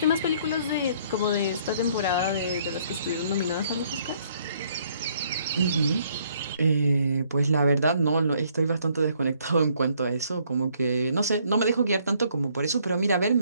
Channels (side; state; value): both; inverted; correlation -0.65